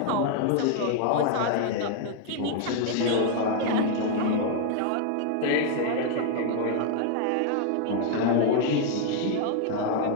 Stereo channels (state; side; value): different; both; correlation 0.00